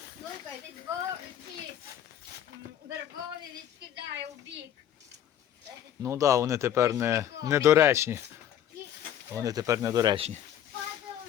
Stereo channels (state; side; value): quieter; right; 10.6 dB